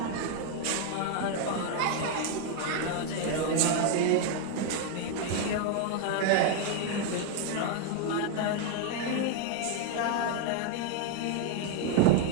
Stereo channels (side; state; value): both; different; correlation 0.00